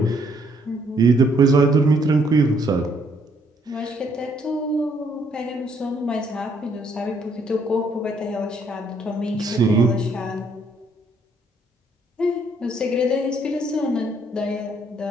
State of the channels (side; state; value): both; normal; correlation 0.68